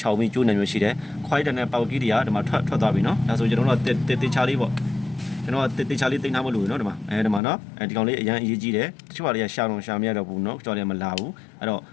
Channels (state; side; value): drops out; right; at 7.4 s